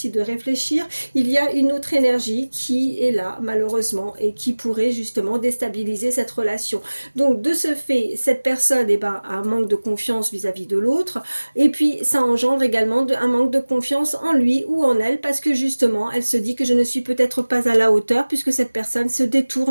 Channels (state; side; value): inverted; both; correlation -1.00